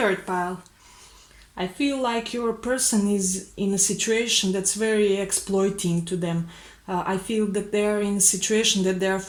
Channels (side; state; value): both; identical; correlation 1.00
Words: pile. I feel like your person is in a situation that's very exploiting to them. I feel that they are in a situation that they are